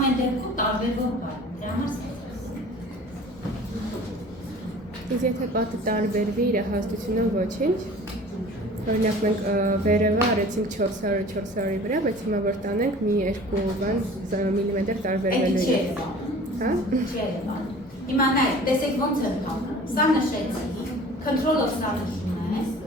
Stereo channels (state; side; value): normal; both; correlation 0.45